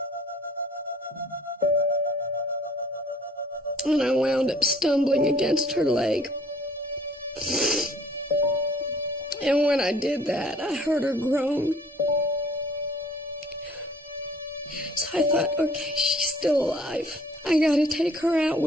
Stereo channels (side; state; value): both; normal; correlation 0.55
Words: And I wound up stumbling against her leg. And when I did that, I heard her groan. So I thought, okay, she's still alive. I gotta take her out